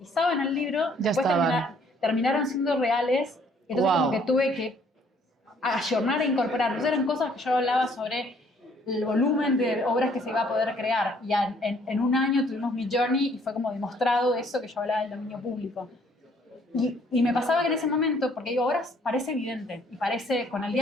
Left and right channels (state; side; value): normal; both; correlation 0.62